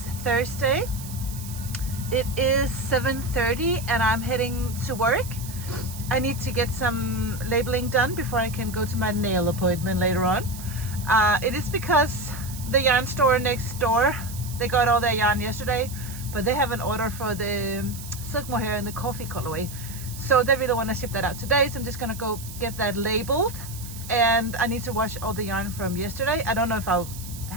Thursday. It is 7:30 and I'm heading to work. I need to get some labeling done before I can go to my nail appointment later on. It is because the yarn store next door, they got all their yarn yesterday, but they have an order for the silk mohair and the coffee colorway. So they really want to ship that out today. So I'm just gonna go get that labeled, and I need to wash all the yarn from yesterday. I don't know if I'll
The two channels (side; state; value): right; noise; hiss, 14 dB below the sound